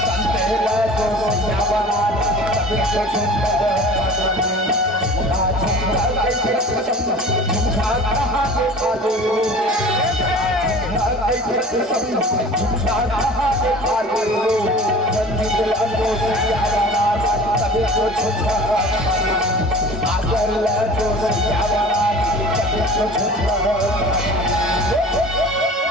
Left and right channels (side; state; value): both; normal; correlation 0.42